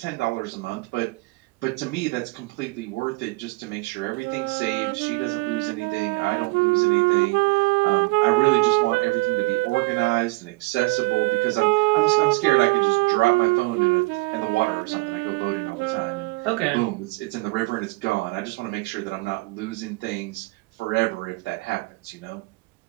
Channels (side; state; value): left; quieter; 25.3 dB